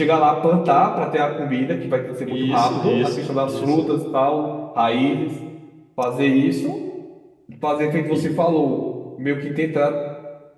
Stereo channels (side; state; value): both; identical; correlation 1.00